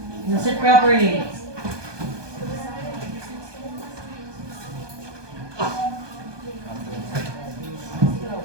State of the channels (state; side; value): late; left; 1.2 ms